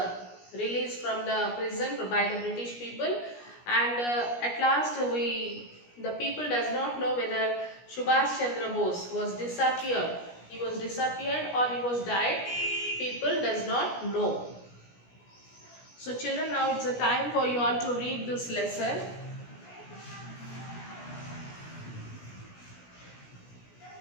released from the prison by the British people, and at last the people does not know whether Subhash Chandra Bose was disappeared. He was disappeared or he was died. People does not know. So children, now it's a time for you all to read this lesson.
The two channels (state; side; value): late; right; 17 ms